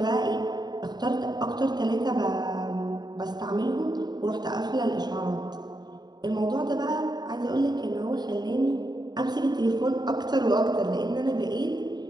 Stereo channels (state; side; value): late; left; 0.20 ms